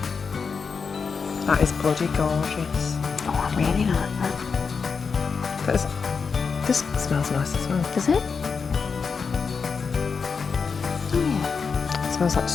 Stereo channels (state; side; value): quieter; right; 5.4 dB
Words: That is bloody gorgeous. Oh, I really like that. That is, this smells nice as well. Does it? Oh yeah. It smells like